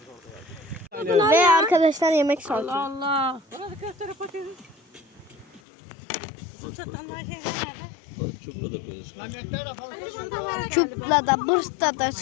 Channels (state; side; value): drops out; right; at 5.6 s